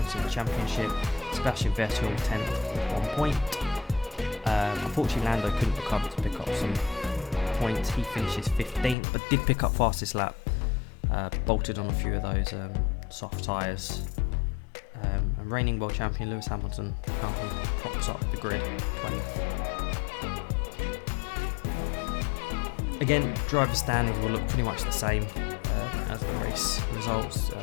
in the championship. Sebastian Vettel 10th with 1 point. Unfortunately, Lando couldn't recover to pick up some points. He finishes 15th, but did pick up fastest lap. Bolted on a few of those soft tyres. And reigning world champion Lewis Hamilton currently props up the grid, 20th. Again, driver standings will look pretty much the same as the race results.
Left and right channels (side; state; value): right; drops out; at 9.0 s